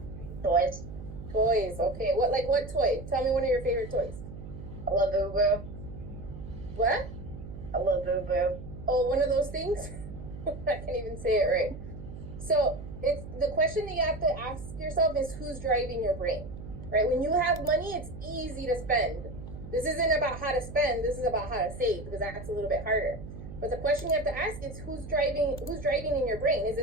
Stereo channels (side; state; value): right; noise; hum, 11 dB below the sound